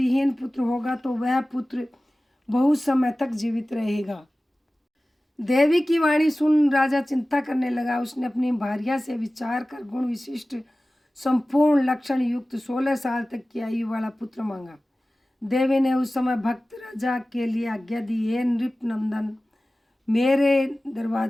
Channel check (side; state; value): both; normal; correlation 0.97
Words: पुत्र होगा तो वह पुत्र बहुत समय तक जीवित रहेगा। देवी की वाणी सुन राजा चिंता करने लगा। उसने अपनी भार्या से विचार कर गुण विशिष्ट संपूर्ण लक्षण युक्त 16 साल तक की आयु वाला पुत्र मांगा। देवी ने उस समय भक्त राजा के लिए आज्ञा दी, हे नृप नंदन, मेरे